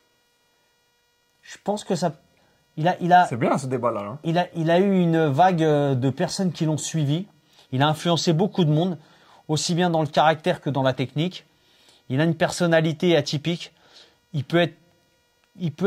Je pense que ça. Il a C'est bien ce débat-là. Hein. il a eu une vague de personnes qui l'ont suivi. Il a influencé beaucoup de monde, aussi bien dans le caractère que dans la technique. Il a une personnalité atypique. Il peut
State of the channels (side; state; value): both; identical; correlation 1.00